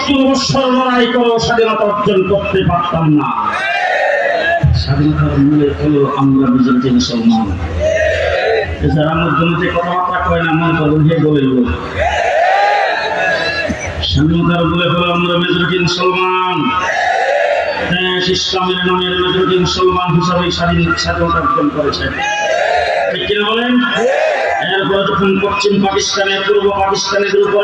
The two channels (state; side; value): identical; both; correlation 1.00